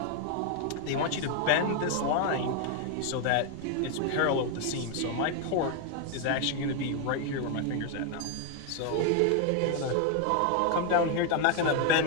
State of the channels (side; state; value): both; different; correlation 0.01